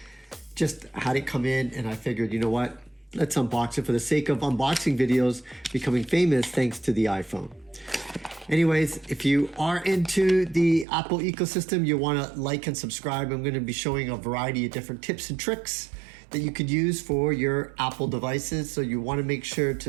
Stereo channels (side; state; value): left; drops out; at 10.9 s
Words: Just had it come in and I figured, you know what? Let's unbox it for the sake of unboxing videos becoming famous thanks to the iPhone. Anyways, if you are into the Apple ecosystem, you wanna like and subscribe. I'm gonna be showing a variety of different tips and tricks that you could use for your Apple devices. So you wanna make sure